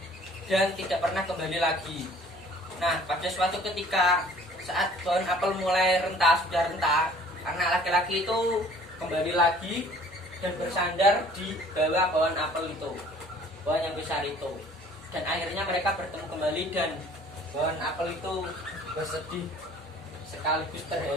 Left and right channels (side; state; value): left; noise; hum, 29 dB below the sound